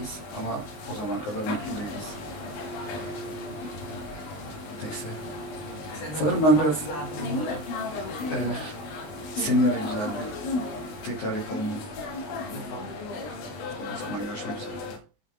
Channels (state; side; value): late; right; 19 ms